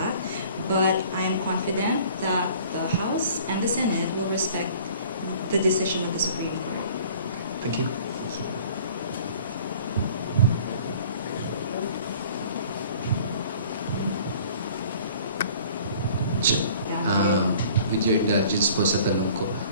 but I am confident that the House and the Senate will respect the decision of the Supreme Court. Thank you. With your indulgence po sa tanong ko,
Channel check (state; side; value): inverted; both; correlation -0.50